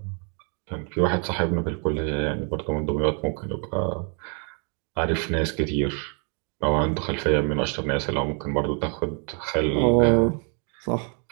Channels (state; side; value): quieter; left; 39.2 dB